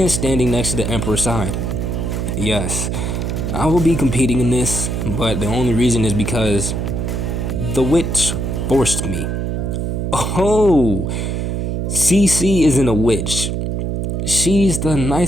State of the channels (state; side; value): noise; right; hum, 1 dB below the sound